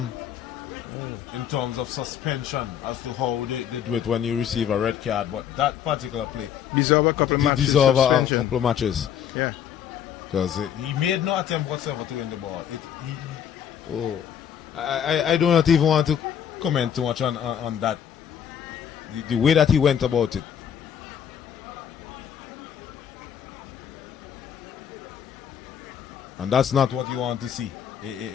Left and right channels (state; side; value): quieter; right; 8.9 dB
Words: in terms of suspension as to how they do it when you receive a red card, but that particular play deserve a couple of matches. Yeah. Because he made no attempt whatsoever to win the ball. I do not even want to comment too much on that. The way that he went about it. And that's not what you want to see